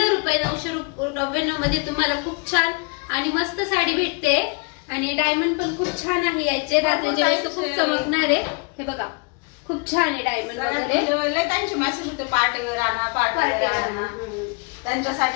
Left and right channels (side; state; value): right; quieter; 32.7 dB